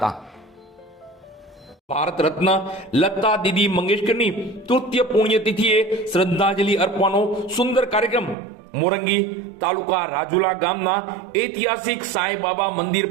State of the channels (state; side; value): drops out; left; at 8.3 s